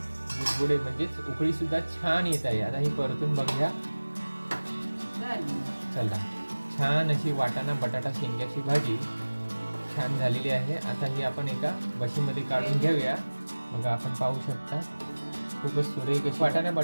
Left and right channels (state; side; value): inverted; both; correlation -1.00